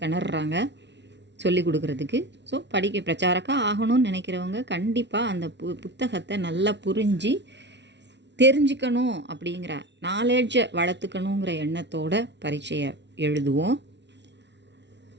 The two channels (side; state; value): left; late; 0.51 ms